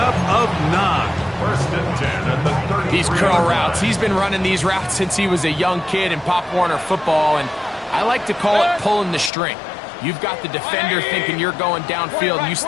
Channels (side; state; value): right; drops out; at 9.3 s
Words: of 9. First and 10 at the 30. These curl routes, he's been running these routes since he was a young kid in Pop Warner football, and I like to call it pulling the string. You've got the defender thinking you're going downfield, and you